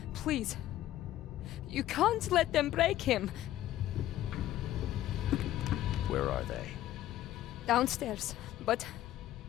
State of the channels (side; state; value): right; quieter; 13.6 dB